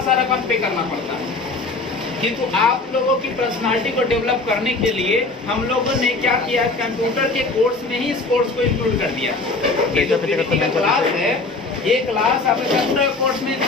रकम पे करना पड़ता है, किंतु आप लोगों की पर्सनालिटी को डेवलप करने के लिए हम लोगों ने क्या किया, कंप्यूटर के कोर्स में ही इस कोर्स को इंक्लूड कर दिया। ये जो पीडीपी का क्लास है, ये क्लास आपके कंप्यूटर कोर्स में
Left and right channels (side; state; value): right; quieter; 3.5 dB